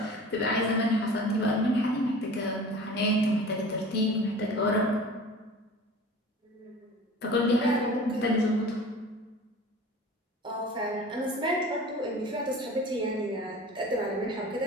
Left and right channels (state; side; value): normal; both; correlation 0.40